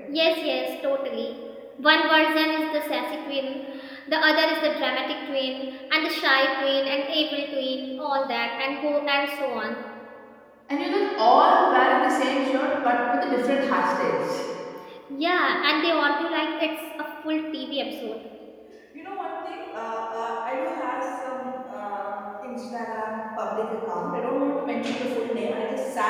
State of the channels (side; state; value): both; identical; correlation 1.00